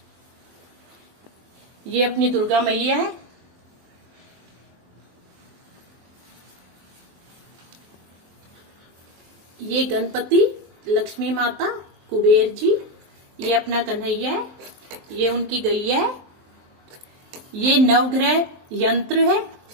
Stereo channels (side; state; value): left; late; 23 ms